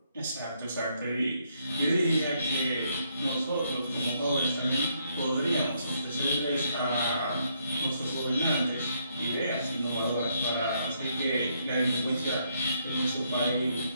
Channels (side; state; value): both; inverted; correlation -0.73